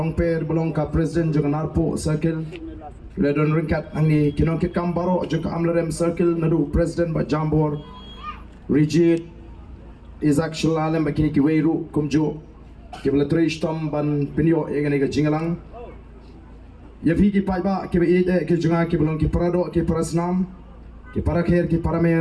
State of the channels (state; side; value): identical; both; correlation 1.00